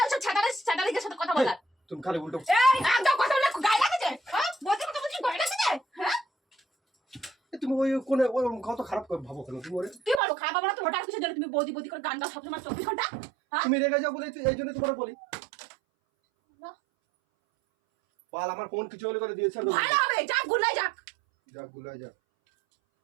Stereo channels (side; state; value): left; drops out; at 10.2 s